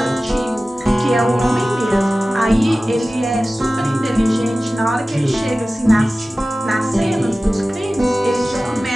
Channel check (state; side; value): normal; both; correlation 0.96